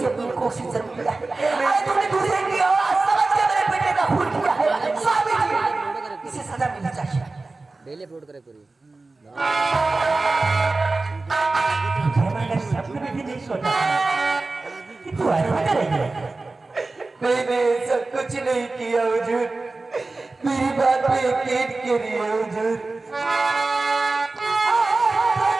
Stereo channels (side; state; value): left; quieter; 3.5 dB